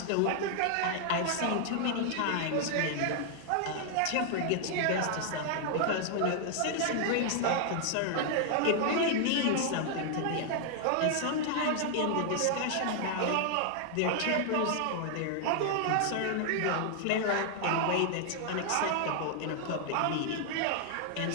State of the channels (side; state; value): both; different; correlation 0.00